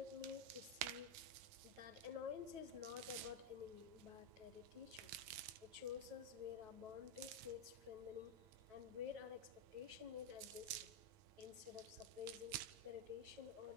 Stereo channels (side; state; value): left; late; 9.2 ms